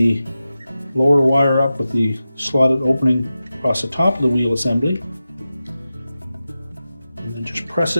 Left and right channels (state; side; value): inverted; both; correlation -0.93